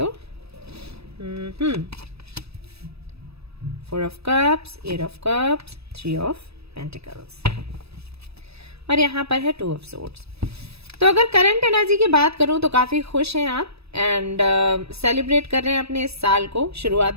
4 of cups, 8 of cups, 3 of pentacles और यहाँ पर है 2 ऑफ सोर्ड्स। तो अगर करंट एनर्जी की बात करूं तो काफी खुश हैं आप एंड सेलिब्रेट कर रहे हैं अपने इस साल को। शुरुआत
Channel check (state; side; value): late; left; 0.78 ms